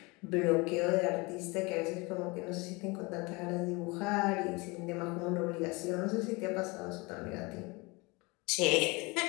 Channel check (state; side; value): quieter; right; 25.9 dB